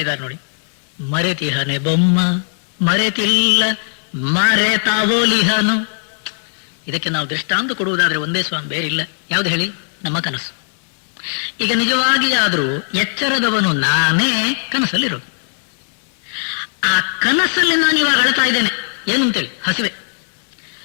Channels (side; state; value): right; silent; digital silence